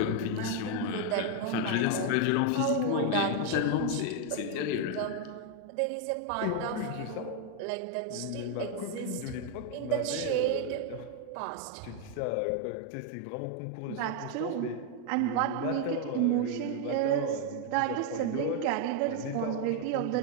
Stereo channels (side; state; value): both; different; correlation 0.01